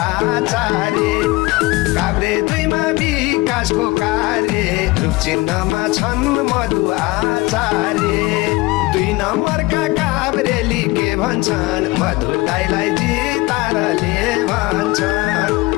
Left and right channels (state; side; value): quieter; right; 21.6 dB